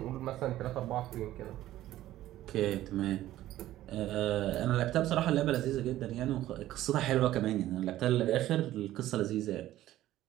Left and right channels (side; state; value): left; quieter; 14.3 dB